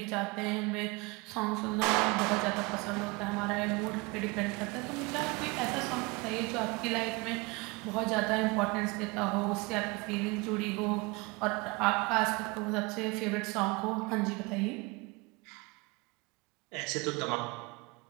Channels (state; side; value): quieter; left; 26.2 dB